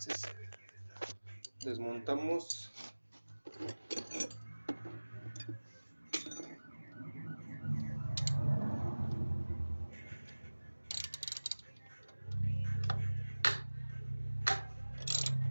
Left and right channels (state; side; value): inverted; both; correlation -1.00